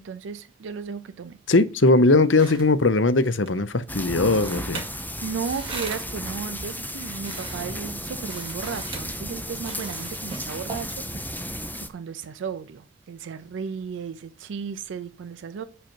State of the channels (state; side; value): normal; both; correlation 0.15